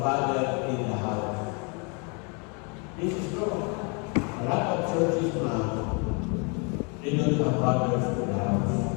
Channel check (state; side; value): quieter; right; 34.4 dB